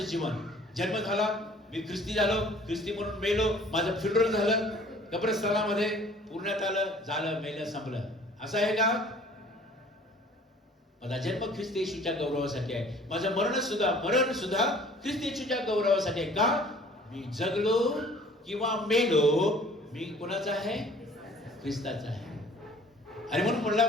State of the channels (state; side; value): normal; both; correlation 0.52